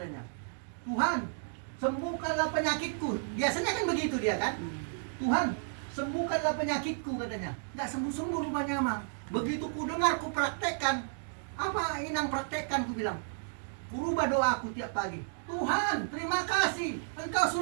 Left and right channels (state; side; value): silent; left; digital silence